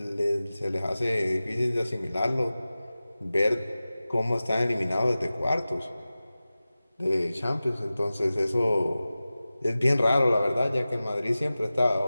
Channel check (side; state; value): both; inverted; correlation -0.96